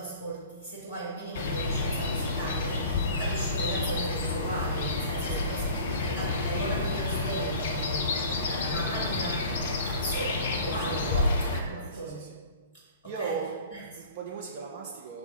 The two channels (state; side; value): inverted; both; correlation -0.44